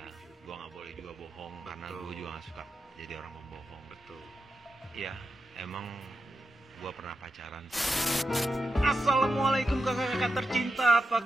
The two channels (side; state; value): both; normal; correlation 0.88